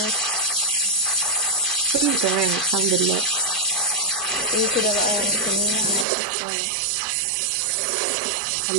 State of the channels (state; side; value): drops out; left; at 6.1 s